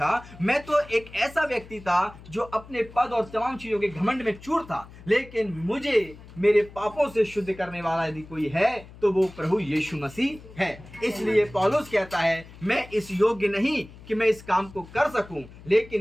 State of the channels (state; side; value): noise; left; hum, 19 dB below the sound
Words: मैं तो एक ऐसा व्यक्ति था जो अपने पद और तमाम चीजों के घमंड में चूर था, लेकिन मुझे मेरे पापों से शुद्ध करने वाला यदि कोई है तो वो प्रभु यीशु मसीह है। इसलिए पौलुस कहता है, मैं इस योग्य नहीं कि मैं इस काम को कर सकूं,